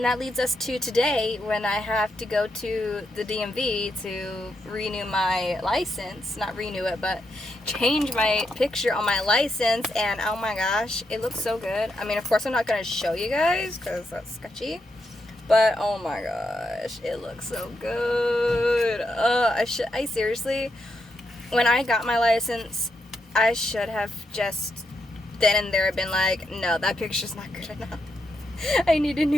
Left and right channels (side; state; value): both; normal; correlation 0.82